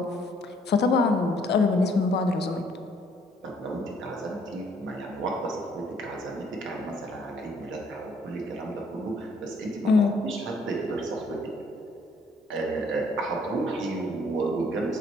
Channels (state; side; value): normal; both; correlation 0.64